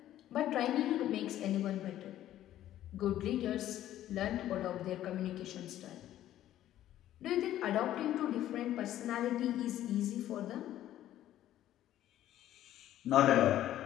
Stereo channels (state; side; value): quieter; right; 12.8 dB